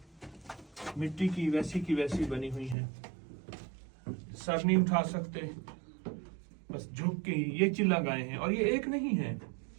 मिट्टी की वैसी बनी हुई हैं। सर नहीं उठा सकते, बस झुक के ये चिल्ला गाए हैं। और ये एक नहीं है,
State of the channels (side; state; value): left; drops out; at 2.8 s